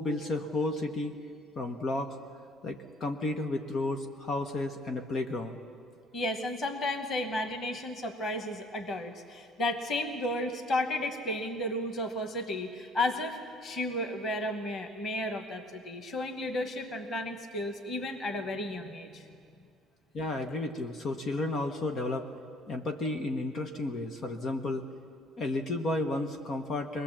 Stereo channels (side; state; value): both; normal; correlation 0.58